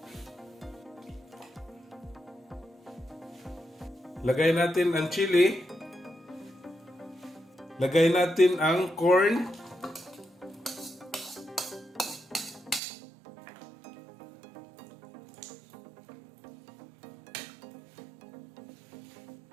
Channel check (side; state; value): left; drops out; at 12.8 s